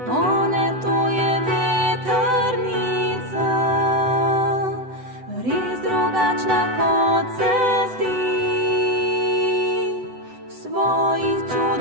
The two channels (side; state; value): left; late; 8.0 ms